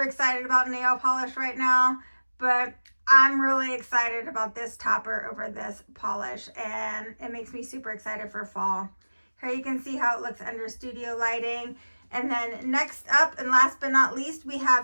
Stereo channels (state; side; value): inverted; both; correlation -1.00